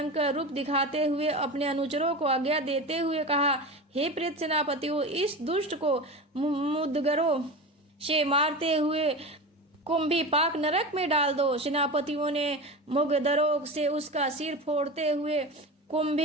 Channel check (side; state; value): both; normal; correlation 0.27